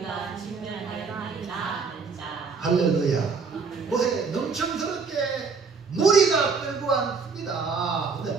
진멸하였나이다 하는 자. 할렐루야. 보세요. 넘청스럽게 무리가 끌고 왔습니다.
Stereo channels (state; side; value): quieter; left; 5.0 dB